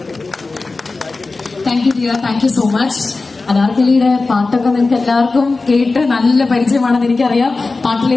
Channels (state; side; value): quieter; right; 3.7 dB